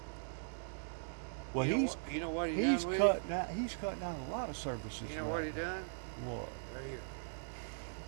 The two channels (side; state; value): left; silent; digital silence